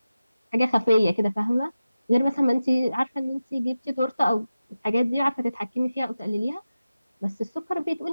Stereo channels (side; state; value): both; inverted; correlation -0.94